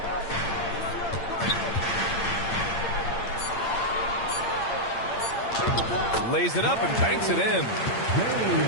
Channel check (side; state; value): right; late; 8.8 ms